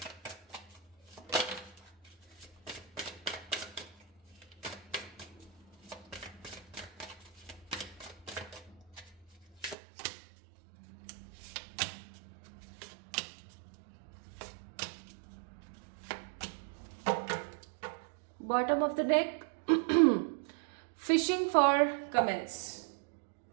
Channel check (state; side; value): drops out; left; at 9.8 s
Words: Bottom of the deck, fishing for comments.